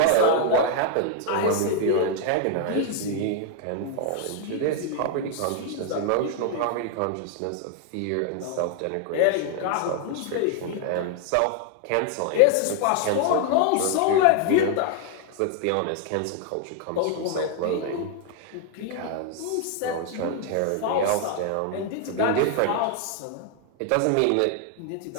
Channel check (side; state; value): both; different; correlation 0.00